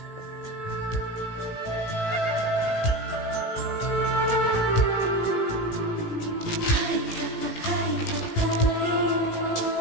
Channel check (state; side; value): late; right; 18 ms